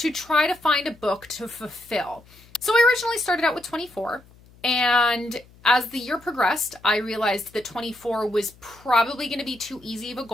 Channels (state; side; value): noise; left; hum, 26 dB below the sound